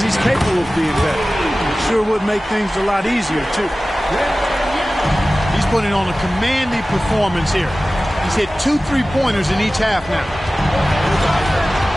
he's capable of being better. Sure would make things a lot easier, too. He's putting on a commanding performance here. He's hit 2 3-pointers in each half now.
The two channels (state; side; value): normal; both; correlation 0.96